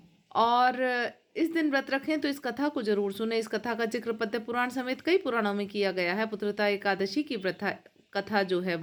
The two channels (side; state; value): both; identical; correlation 1.00